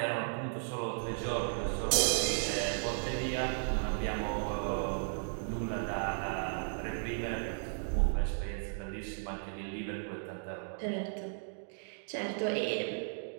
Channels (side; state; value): left; silent; digital silence